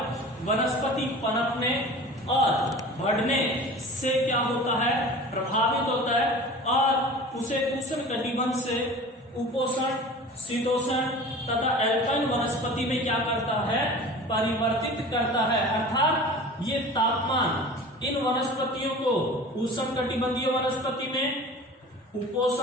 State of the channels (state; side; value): normal; both; correlation 0.39